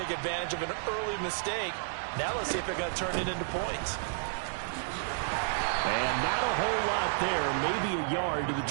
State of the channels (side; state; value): left; silent; digital silence